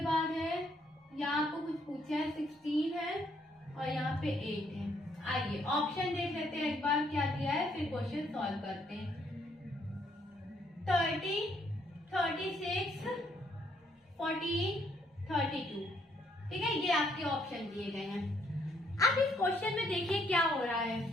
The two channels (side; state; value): both; normal; correlation 0.70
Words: बाद है यहाँ को कुछ पूछा है 16 है और यहाँ पे 8 है। आइए ऑप्शन देख लेते हैं एक बार क्या दिया है, फिर क्वेश्चन सॉल्व करते हैं। 30, 36, 14, 32, ठीक है, ये आपके ऑप्शन दिए गए हैं। अब इस क्वेश्चन में देखिए क्या हो रहा है।